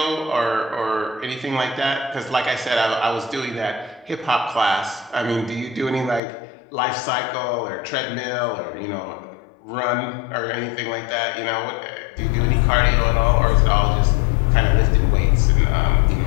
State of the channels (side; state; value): right; drops out; at 6.2 s